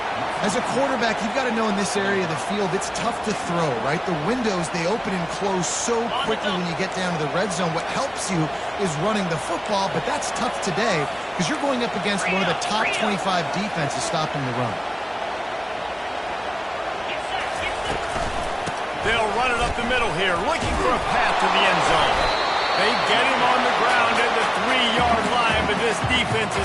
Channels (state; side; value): identical; both; correlation 1.00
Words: As a quarterback, you've got to know in this area of the field, it's tough to throw, right? The windows, they open and close so quickly when you get down to the red zone. What helps you is running the football, but that's tough today because you're going up against one of the top 25 defenses stopping the run. They'll run it up the middle here, looking for a path to the end zone. They get him on the ground at the 3-yard line, but this defense